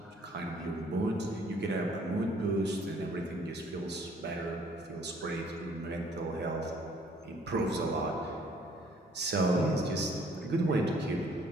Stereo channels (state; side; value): normal; both; correlation 0.60